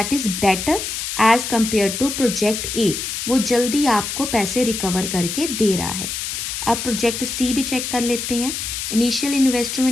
is better as compare to project A, वो जल्दी आपको पैसे रिकवर करके दे रहा है। अब प्रोजेक्ट सी भी चेक कर लेते हैं। इनिशियल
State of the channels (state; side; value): noise; left; hiss, 4 dB below the sound